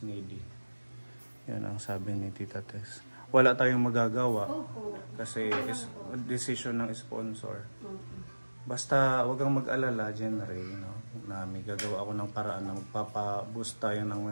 needy. Yan ang sabi ni Tita Tess. Wala tayong magagawa Opo. kasi decision ng sponsor. Okay. Basta wag kang mag-alala, Jenry, no? Na may gagawa ako ng paraan na magpapa-boost tayo ng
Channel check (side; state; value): both; inverted; correlation -1.00